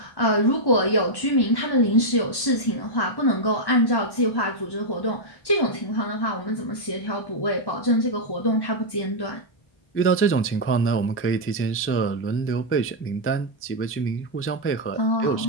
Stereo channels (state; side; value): late; right; 1.1 ms